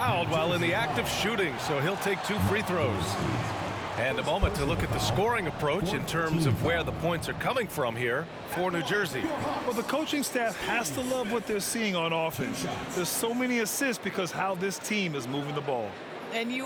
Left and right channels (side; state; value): both; identical; correlation 1.00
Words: while in the act of shooting, so he'll take 2 free throws. And a moment to look at the scoring approach in terms of where the points are coming from here for New Jersey. Well, the coaching staff has to love what they're seeing on offense. There's so many assists because how this team is moving the ball. And